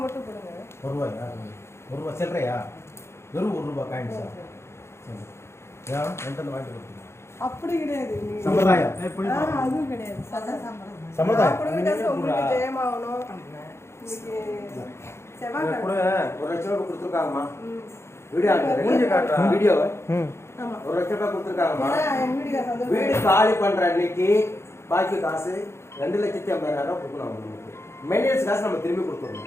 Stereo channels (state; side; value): late; right; 0.13 ms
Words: மட்டும் கொடுங்க. ₹1 சில்லறையா? வெறும் ₹1 காயின்ஸா? ஏன் என்கிட்ட வாங்கி கொடுத்தீங்க? அப்படி கிடையாது. சம்பிரதாயம் அதுவும் கிடையாது. சம்பிரதாயம் உங்களுக்கு ஜெயமாகணும். இன்னைக்கு செவ்வாய் கூட ₹1,00,000 கொடுத்துருக்காங்கம்மா. வீடியோ ஆமா. ₹1,00,000 கொடுத்துருக்காங்கம்மா. வீடு வீடு காலி பண்ற அன்னைக்கு பாக்கி காசு ₹2,50,000 கொடுக்கணும் அவங்களுக்கு. மெயின்டெனன்ஸ் காசு நம்ம திரும்பி